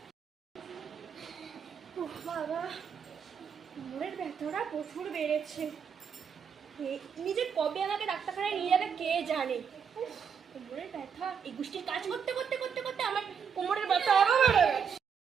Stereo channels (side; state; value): left; quieter; 7.0 dB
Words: বাবা কোমরের ব্যথাটা প্রচুর বেড়েছে। নিজে কবে আমাকে ডাক্তারখানায় নিয়ে যাবে কে জানে। কোমরের ব্যথা, এই গোষ্ঠীর কাজ করতে করতে করতে করতে আমার কোমরের ব্যথা আরো বেড়ে গেছে।